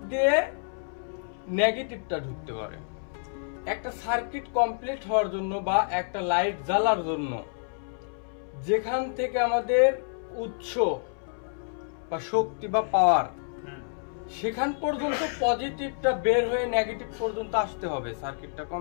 দিয়ে নেগেটিভটা ঢুকতে পারে। একটা সার্কিট কমপ্লিট হওয়ার জন্য বা একটা লাইট জ্বালার জন্য যেখান থেকে আমাদের উৎস বা শক্তি বা পাওয়ার সেখান পর্যন্ত পজিটিভটা বের হয়ে নেগেটিভ পর্যন্ত আসতে হবে সার্কিটটা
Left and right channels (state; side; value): silent; right; 59 dB below the other